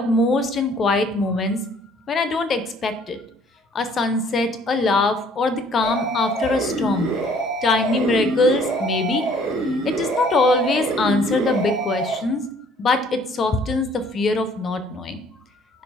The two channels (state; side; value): normal; both; correlation 0.58